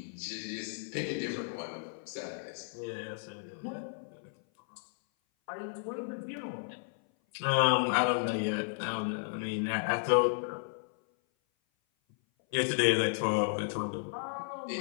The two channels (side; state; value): right; silent; 55 dB below the other